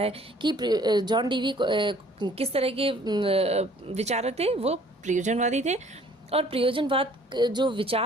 कि जॉन डीवी किस तरह के विचारक थे, वो प्रयोजनवादी थे। और प्रयोजनवाद जो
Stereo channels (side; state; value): both; normal; correlation 0.56